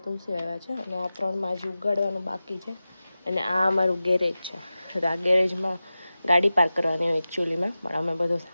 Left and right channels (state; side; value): inverted; both; correlation -0.95